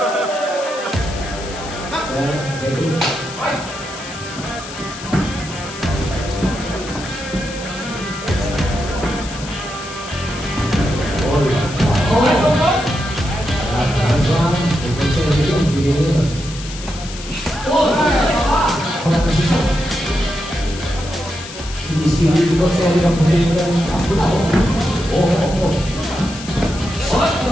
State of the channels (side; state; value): left; noise; hiss, 13 dB below the sound